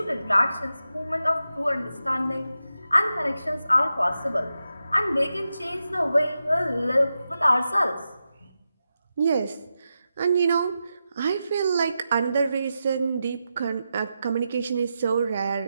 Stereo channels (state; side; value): inverted; both; correlation -0.89